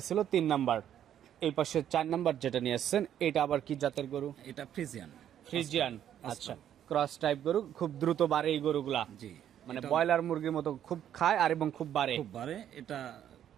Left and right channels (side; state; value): left; quieter; 10.3 dB